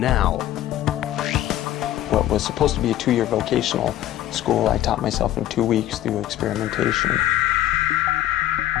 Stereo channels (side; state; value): right; quieter; 13.2 dB